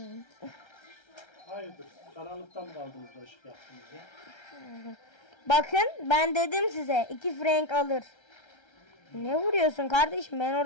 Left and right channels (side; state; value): right; late; 1.3 ms